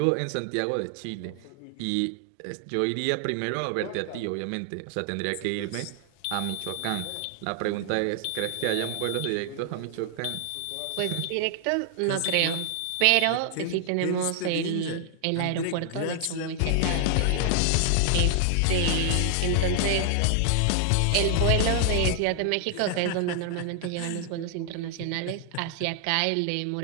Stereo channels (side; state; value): both; different; correlation 0.00